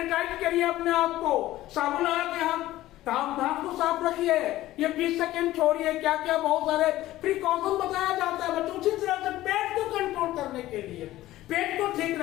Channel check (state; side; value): quieter; right; 15.6 dB